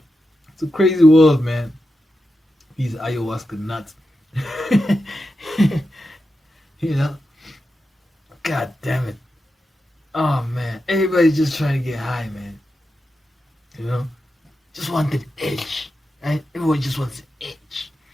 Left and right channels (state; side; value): normal; both; correlation 0.89